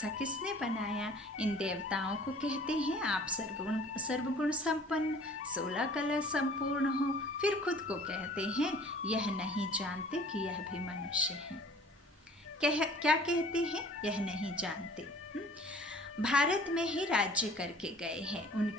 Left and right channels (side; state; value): both; normal; correlation 0.50